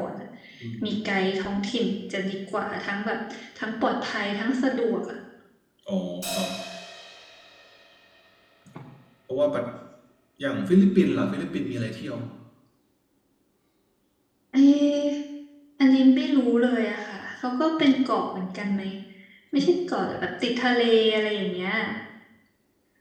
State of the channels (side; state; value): both; identical; correlation 1.00